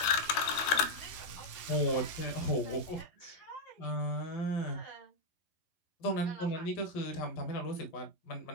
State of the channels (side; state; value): right; late; 12 ms